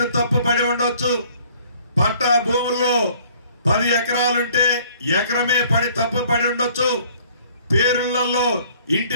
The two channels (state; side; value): inverted; both; correlation -0.57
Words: తప్పు పడి ఉండొచ్చు, పట్టా భూముల్లో 10 ఎకరాలుంటే ఎకరమే పడి తప్పు పడి ఉండొచ్చు, పేరులలో